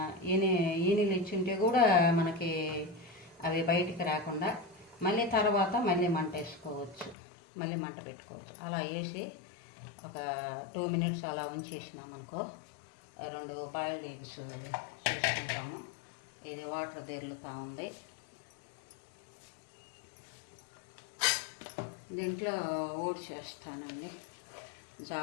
ఈనెలు ఇచ్చుంటే కూడా మనకి అవి బయటికి రాకుండా మళ్ళీ తర్వాత మళ్ళీ మంట వేసుకోవచ్చు, మళ్ళీ మంట పెట్టుకోవచ్చు. అలా వేసి ఒక 2 minutes అలా ఉంచేసినామనుకో 2 బాయిల్డ్ ఎగ్స్ చేసుకుంటాము. ఇది వాటర్ తెరులుతూ ఉంది. దీంట్లో ఓట్స్ వేస్తానండి.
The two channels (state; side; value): drops out; right; at 7.2 s